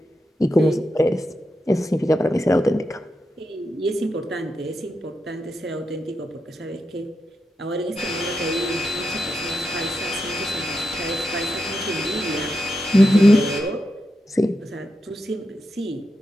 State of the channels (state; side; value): normal; both; correlation 0.86